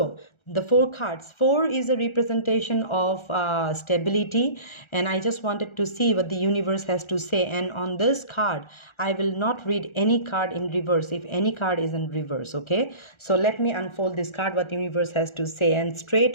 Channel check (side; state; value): right; late; 1.4 ms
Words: the 4 cards, 4 is a representation of stability, and I just wanted to see what the universe has to say. And on this card I will not read any card in reverse if any card is in reverse, okay? So let me unfold this card, what the universe has to say. And straight